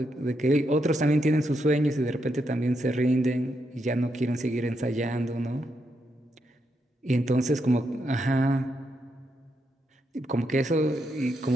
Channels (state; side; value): normal; both; correlation 0.81